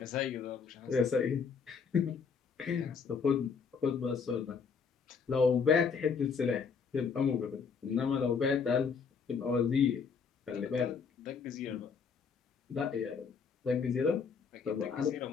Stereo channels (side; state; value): right; quieter; 5.8 dB